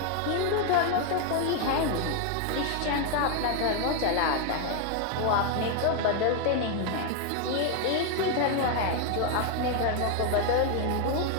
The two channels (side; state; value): both; different; correlation 0.01